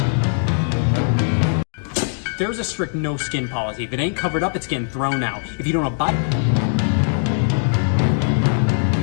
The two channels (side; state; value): right; silent; digital silence